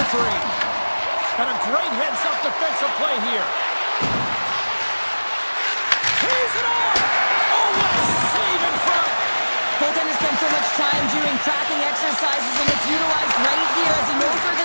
3. And a great heads-up defensive play here. Here's it off! Oh, what a save in front! Goaltender spends so much time doing tracking exercises, and it's utilized right here as he knows where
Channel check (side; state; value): both; inverted; correlation -1.00